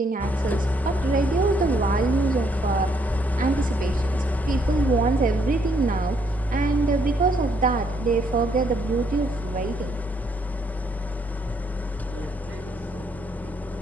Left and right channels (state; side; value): normal; both; correlation 0.71